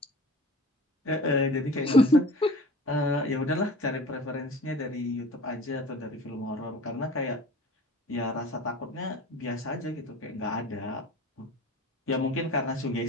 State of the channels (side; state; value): both; normal; correlation 0.40